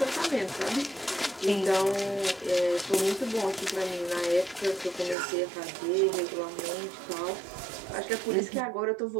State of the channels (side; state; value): left; drops out; at 5.2 s